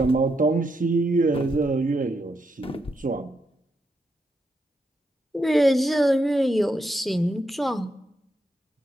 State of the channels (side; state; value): both; normal; correlation 0.82